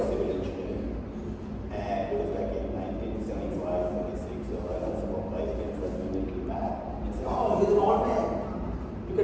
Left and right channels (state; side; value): identical; both; correlation 1.00